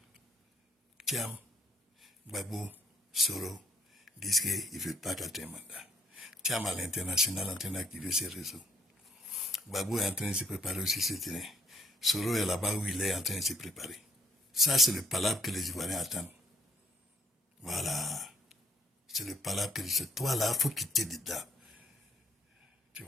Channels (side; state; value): both; normal; correlation 0.68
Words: Tiens, Gbagbo, Soro, disent qu'ils ne veulent pas quatrième mandat. Tiens, à l'international en train d'activer ses réseaux. Gbagbo est en train de se préparer aussi ce terrain. Soro est là-bas où il est en train de se préparer. Ça, c'est le palabre que les Ivoiriens attendent. Voilà. C'est le palabre que c'est toi là, il faut quitter dedans. Tu